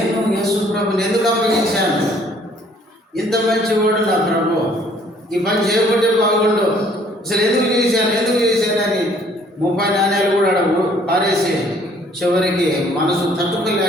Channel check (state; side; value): normal; both; correlation 0.60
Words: యేసు ప్రభుని ఎందుకు అప్పగించాను? ఇంత మంచివాడు నా ప్రభు, ఈ పని చేయకుంటే బాగుండు, అసలు ఎందుకు చేశానని 30 నాణ్యాలు కూడా పారేసి చివరికి మనసు